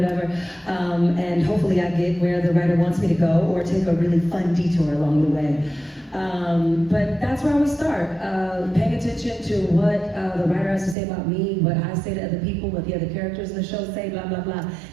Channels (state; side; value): drops out; left; at 11.0 s